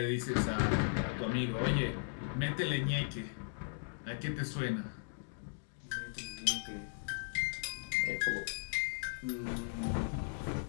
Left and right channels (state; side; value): silent; right; digital silence